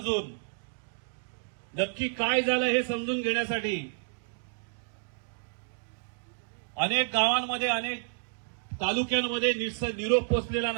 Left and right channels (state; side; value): silent; left; digital silence